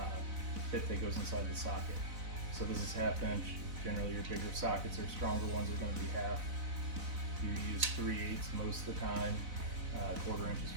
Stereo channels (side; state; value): left; late; 4.0 ms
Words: bit that goes inside the socket. So this is 1/2 inch. Generally your bigger sockets or stronger ones are going to be 1/2. You use 3/8 most of the time. 1/4 inches